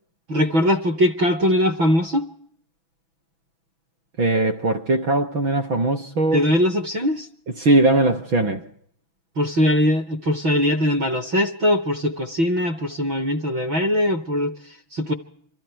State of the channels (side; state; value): left; late; 6.1 ms